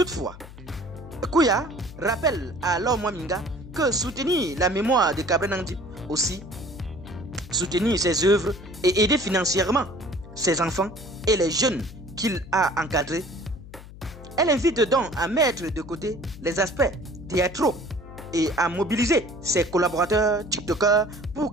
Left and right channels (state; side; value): noise; left; hum, 16 dB below the sound